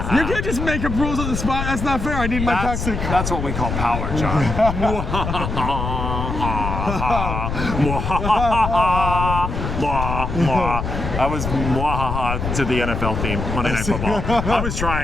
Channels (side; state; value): left; noise; rumble, 3 dB below the sound